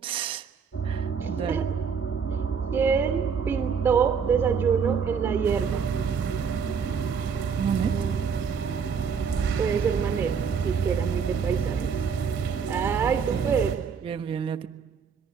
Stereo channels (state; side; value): quieter; left; 6.4 dB